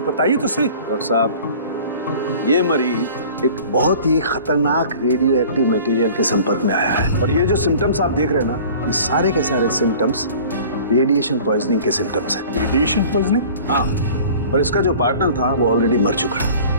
बताइए तो सही। डॉक्टर साहब, ये मरीज एक बहुत ही खतरनाक रेडियो एक्टिव मटेरियल के संपर्क में आया है, और ये जो सिम्टम्स आप देख रहे हैं ना, ये सारे के सारे सिम्टम्स रेडिएशन पॉइजनिंग के सिम्टम्स हैं। Radiation poisoning? हाँ, और इसका जो पार्टनर था वो ऑलरेडी मर चुका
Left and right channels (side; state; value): both; inverted; correlation -0.45